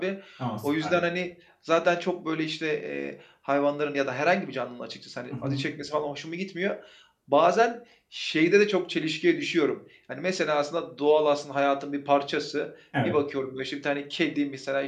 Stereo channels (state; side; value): identical; both; correlation 1.00